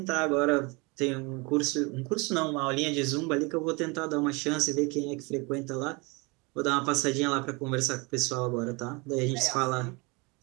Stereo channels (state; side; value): quieter; left; 27.9 dB